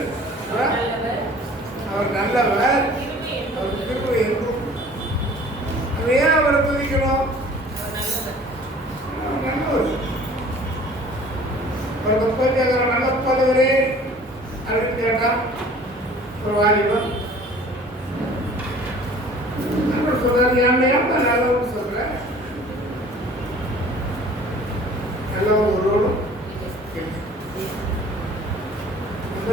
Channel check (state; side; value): normal; both; correlation 0.49